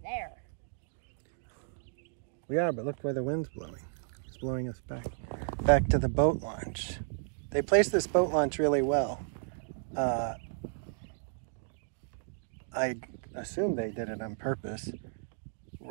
there. We are, but look where the wind's blowing. It's blowing us back to the boat launch. They placed this boat launch really well. I assume they did it on purpose,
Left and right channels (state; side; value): silent; left; digital silence